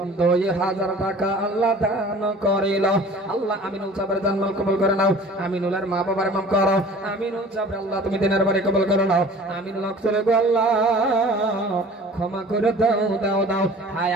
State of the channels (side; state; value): both; normal; correlation 0.46